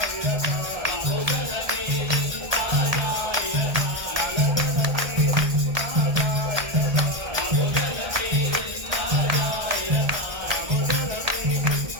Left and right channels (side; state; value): left; late; 1.7 ms